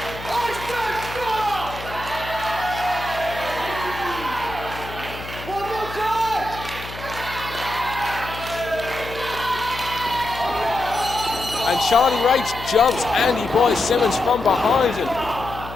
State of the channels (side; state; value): left; noise; hum, 13 dB below the sound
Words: And Charlie Rage jumps Andy Boy Simmonz from behind him.